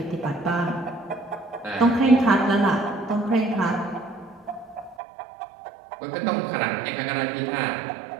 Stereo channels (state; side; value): drops out; left; at 5.0 s